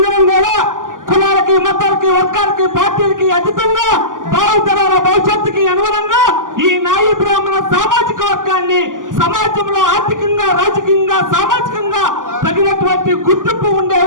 కూడా కులాలకి, మతాలకి, వర్గాలకి, పార్టీలకి అతీతంగా భావితరాల భవిష్యత్తుకి అనుగుణంగా ఈ నాయి బ్రాహ్మణ సామాజిక వర్గాన్ని సమాజంలో ఆర్థికంగా, రాజకీయంగా, సామాజికంగా తగినటువంటి గుర్తింపు ఉండే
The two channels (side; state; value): left; late; 0.88 ms